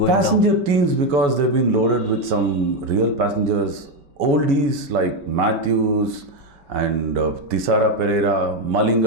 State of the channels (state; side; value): late; left; 5.2 ms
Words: down. Passenger teams, because they've been loaded with some real passengers, oldies like Matthews and Tisara Pereira,